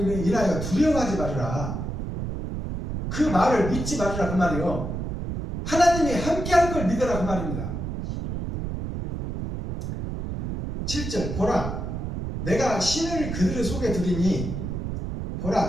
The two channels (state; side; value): noise; right; rumble, 5 dB below the sound